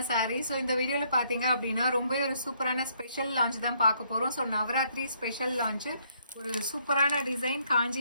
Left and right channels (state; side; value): inverted; both; correlation -0.69